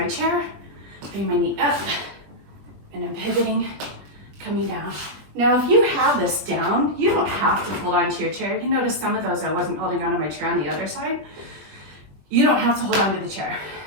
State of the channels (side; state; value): left; late; 20 ms